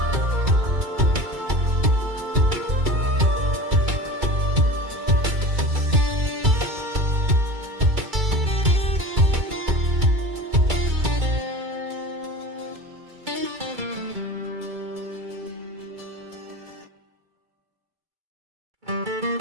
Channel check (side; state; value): left; late; 2.3 ms